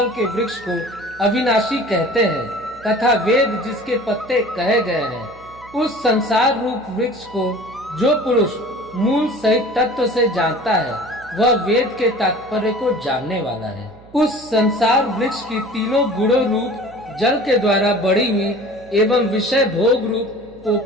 के वृक्ष को अविनाशी कहते हैं तथा वेद जिसके पत्ते कहे गए हैं, उस संसार रूप वृक्ष को जो पुरुष मूल सहित तत्व से जानता है वह वेद के तात्पर्य को जानने वाला है। उस संसार वृक्ष की तीनों गुणों रूप जल के द्वारा बढ़ी हुई एवं विषय भोग रूप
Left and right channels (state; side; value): noise; right; hum, 23 dB below the sound